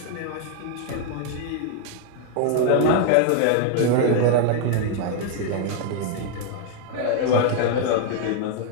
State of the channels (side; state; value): both; different; correlation 0.00